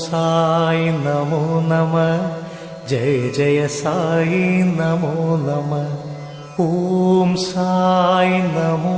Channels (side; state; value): both; identical; correlation 1.00